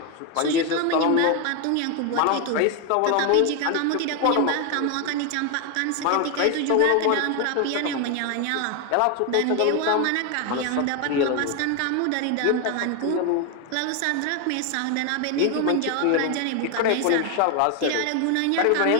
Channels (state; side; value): different; both; correlation 0.01